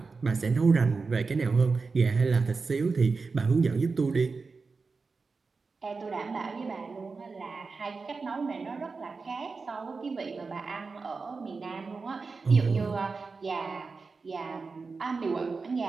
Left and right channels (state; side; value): quieter; left; 4.4 dB